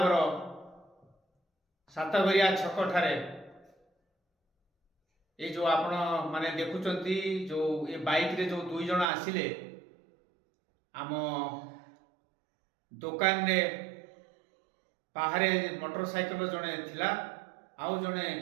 सातघरिया छक ठारे ये जो आपण माने देखुचंती जो ये बाइक रे जो दुई जन आसिले आम दुकान रे बाहरे मोटरसाइकेल जड़े थिला आउ जड़े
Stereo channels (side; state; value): left; drops out; at 9.1 s